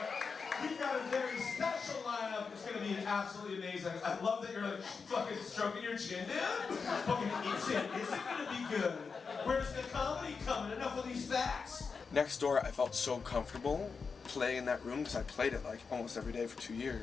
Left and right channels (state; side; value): quieter; right; 5.2 dB